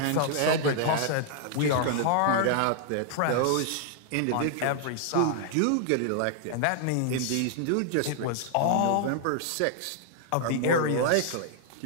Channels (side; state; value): both; different; correlation -0.01